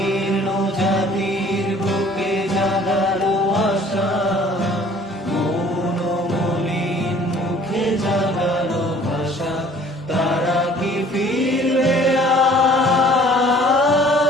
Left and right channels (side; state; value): both; normal; correlation 0.53